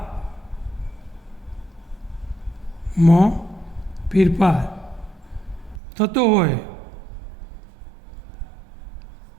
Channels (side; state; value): left; drops out; at 5.8 s